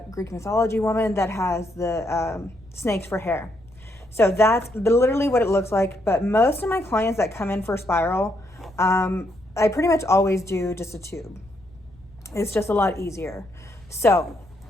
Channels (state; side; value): noise; left; rumble, 27 dB below the sound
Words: Greek mythology woman that has the snakes for hair. So that's literally what it looks like. But most of my clients that come in for spiral, I pretty much always do just a tube. It's just a lot easier. So